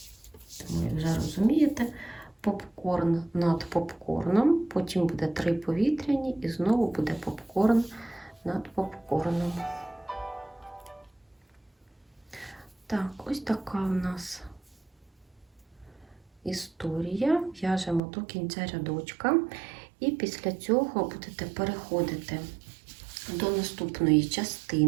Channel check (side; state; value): left; drops out; at 18.0 s